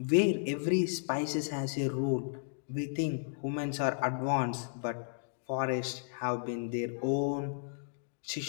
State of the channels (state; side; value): silent; right; digital silence